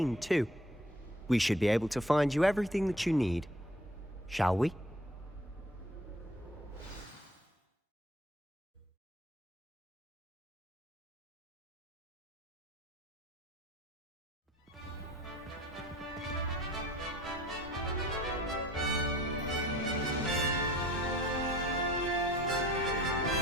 too. We should be able to find you everything that you need. Shall we?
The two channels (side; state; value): both; normal; correlation 0.51